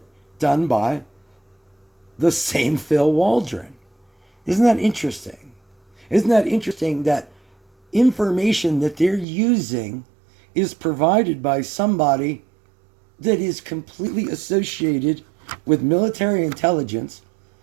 done by the same Phil Waldron. Isn't that interesting? Isn't that interesting that information that they're using is provided by somebody that is completely associated with military intelligence,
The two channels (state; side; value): drops out; left; at 9.2 s